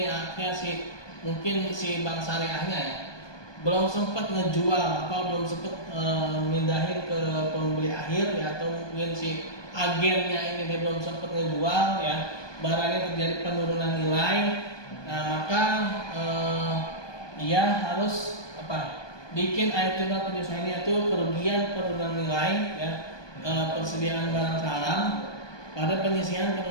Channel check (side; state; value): right; late; 1.2 ms